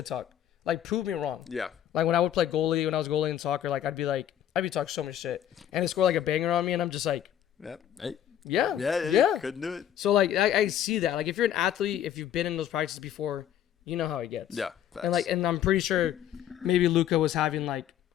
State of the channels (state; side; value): quieter; right; 10.8 dB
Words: talk. Like prove me wrong. Yeah. Like when I would play goalie, when I was goalie in soccer, like I'd be talking so much shit, and they score like a banger on me, and I'm just like, Yep. Hey. Yeah. Couldn't do it. So like I see that. Like if you're an athlete, if you've been in those practices before, you know how it gets. Yeah. Facts. And I'm pretty sure maybe Luka was having like